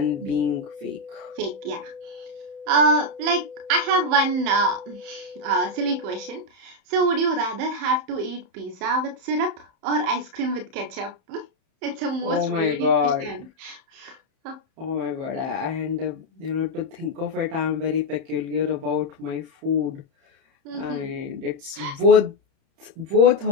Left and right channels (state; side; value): late; left; 31 ms